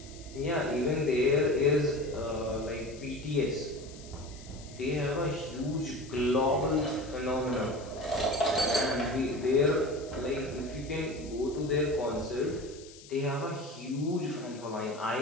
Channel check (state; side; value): noise; left; hiss, 20 dB below the sound